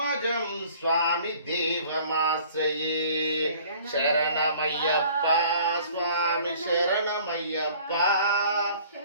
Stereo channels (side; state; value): both; inverted; correlation -0.52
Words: స్వామి దేవమాశ్రయే శరణమయ్యప్ప స్వామి శరణమయ్యప్ప